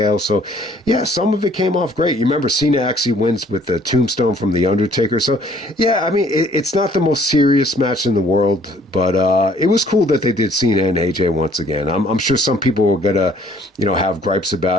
So, yeah, some of it came off great. You remember Cena actually wins with the tombstone from the Undertaker. So, yeah, I mean, it's not the most serious match in the world, but it was cool that they did Cena and AJ once again. I'm sure some people were gonna, have gripes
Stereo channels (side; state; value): both; normal; correlation 0.59